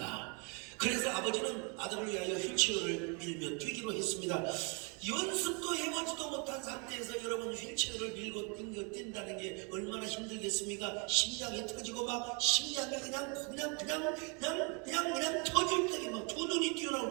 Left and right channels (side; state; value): left; quieter; 34.2 dB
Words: 그래서 아버지는 아들을 위하여 휠체어를 밀며 뛰기로 했습니다. 연습도 해보지도 못한 상태에서 여러분 휠체어를 밀고 뛴다는 게 얼마나 힘들겠습니까? 심장이 터지고 막 심장이 그냥 터질 때에 막 두 눈이 튀어나올